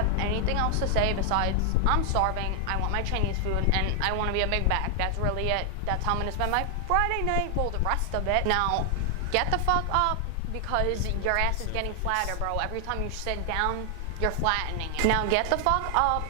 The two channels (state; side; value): different; both; correlation 0.00